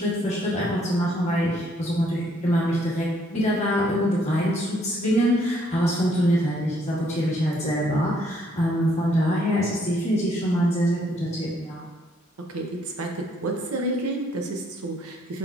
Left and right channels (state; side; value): normal; both; correlation 0.68